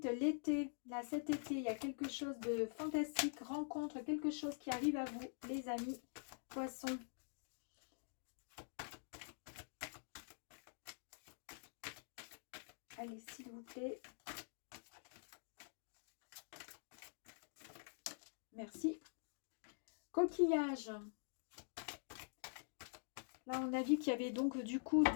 l'été, là, cet été, il y a quelque chose de fantastique, rencontre, quelque chose qui arrive à vous, les amis, poissons. Allez, s'il vous plaît. Merci. Coquillage. Là, on a vu qu'il y avait donc du coup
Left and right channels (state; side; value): silent; right; digital silence